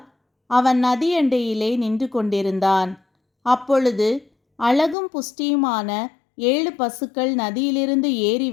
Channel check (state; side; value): drops out; right; at 5.0 s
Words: அவன் நதியண்டையிலே நின்று கொண்டிருந்தான். அப்பொழுது அழகும் புஷ்டியுமான 7 பசுக்கள் நதியிலிருந்து ஏறி